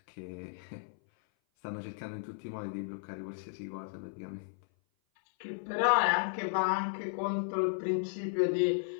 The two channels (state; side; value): silent; right; 55 dB below the other